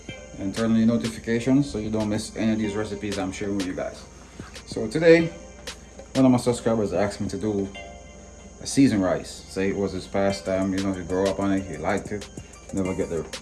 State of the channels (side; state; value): both; identical; correlation 1.00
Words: and turn on your notifications so you don't miss any of these recipes I'm sharing with you guys. So today, one of my subscribers asked me to do a seasoned rice. Say it was his pastime, you grow up on it, he liked it, never get the